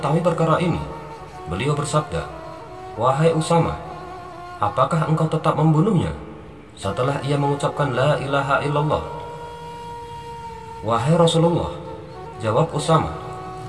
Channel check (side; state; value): both; identical; correlation 1.00